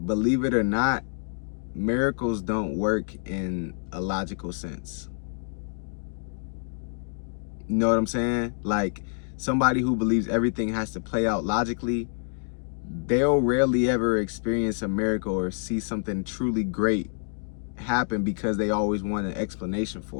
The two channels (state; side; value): silent; right; 58 dB below the other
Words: believe it or not, miracles don't work in a logical sense. You know what I'm saying? Like somebody who believes everything has to play out logically, they'll rarely ever experience a miracle or see something truly great happen because they always want an explanation